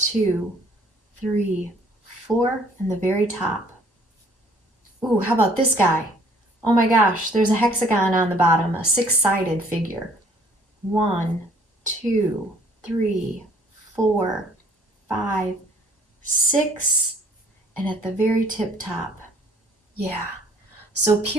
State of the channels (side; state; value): both; normal; correlation 0.58